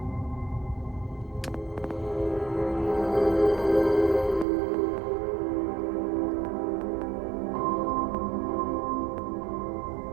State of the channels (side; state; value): left; drops out; at 4.5 s